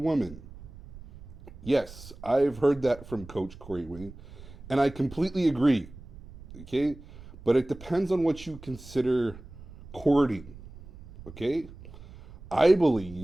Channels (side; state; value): right; noise; rumble, 17 dB below the sound